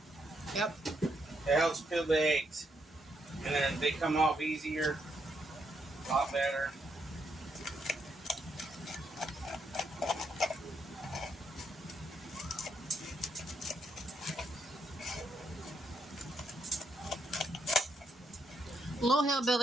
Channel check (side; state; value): both; normal; correlation 0.78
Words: Yep. It helps peel the eggs. And then they come off easier, a lot better. Little